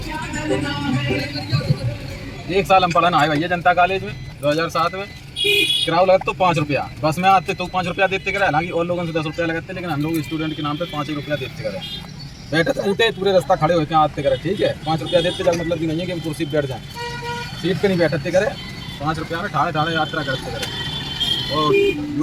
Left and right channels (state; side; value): identical; both; correlation 1.00